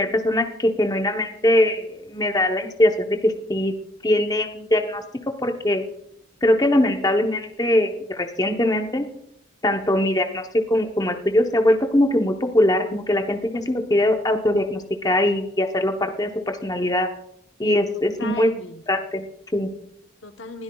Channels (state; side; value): normal; both; correlation 0.69